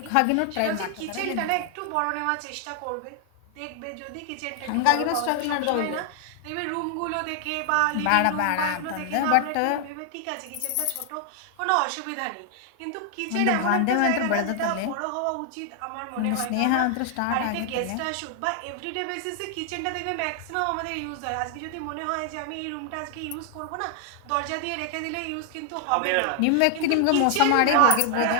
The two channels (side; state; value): both; different; correlation 0.00